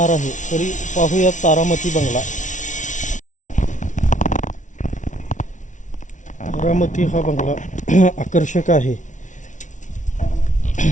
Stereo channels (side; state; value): right; late; 0.37 ms